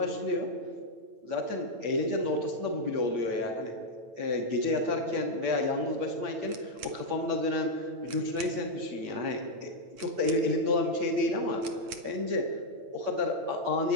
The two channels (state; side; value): late; left; 9.2 ms